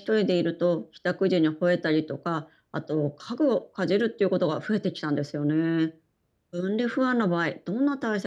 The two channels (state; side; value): identical; both; correlation 1.00